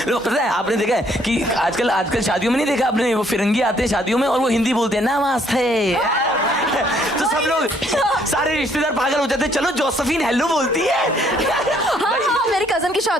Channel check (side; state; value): both; normal; correlation 0.66